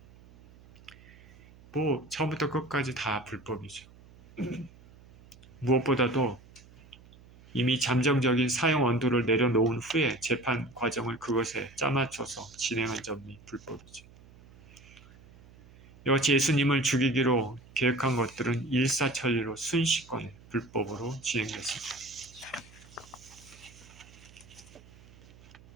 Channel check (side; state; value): right; noise; hum, 23 dB below the sound